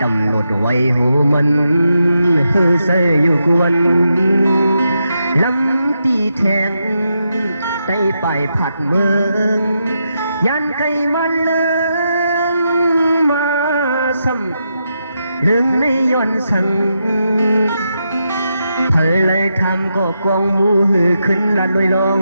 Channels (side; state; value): both; inverted; correlation -0.84